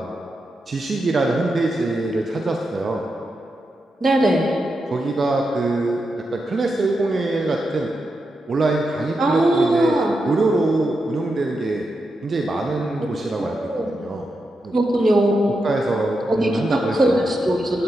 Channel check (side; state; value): both; normal; correlation 0.87